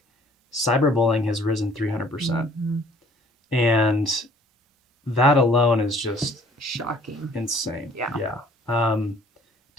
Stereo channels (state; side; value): normal; both; correlation 0.55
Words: cyberbullying has risen 300%. And that alone is just shocking, insane.